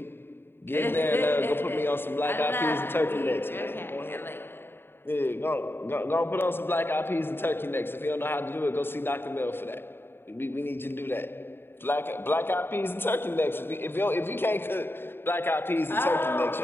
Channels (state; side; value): late; right; 0.11 ms